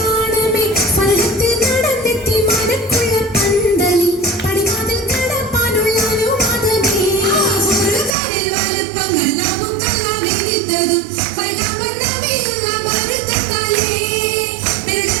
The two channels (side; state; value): left; drops out; at 8.2 s